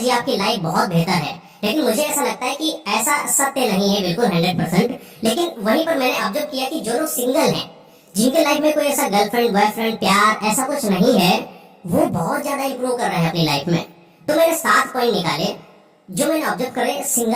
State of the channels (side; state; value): both; identical; correlation 1.00